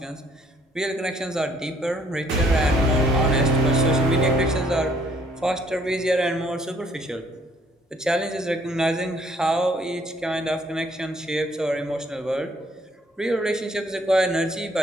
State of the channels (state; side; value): normal; both; correlation 0.64